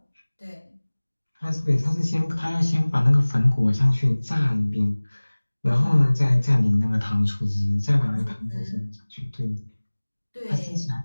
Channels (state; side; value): inverted; both; correlation -1.00